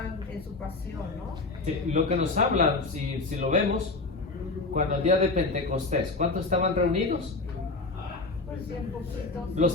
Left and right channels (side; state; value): right; quieter; 3.5 dB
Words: en su pasión, ¿no? Sí, lo que nos habla, si lo vemos, cuando el día de Pentecostés, ¿cuántos estaban reunidos? Pues bien poquitos. Los